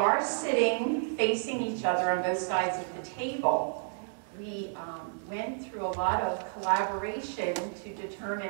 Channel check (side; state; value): left; silent; digital silence